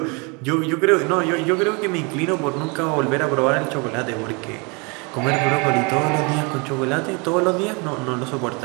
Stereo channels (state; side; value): quieter; left; 30.9 dB